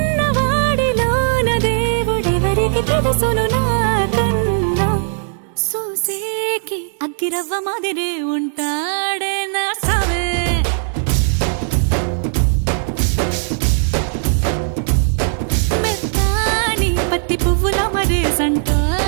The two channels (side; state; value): left; silent; 68 dB below the other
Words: దేవుడెవరికి తెలుసును నాకన్నా. సూసేకి అగ్గిరవ్వ మాదిరి ఉంటాడే నా సావే. మెత్తాని పత్తి పువ్వుల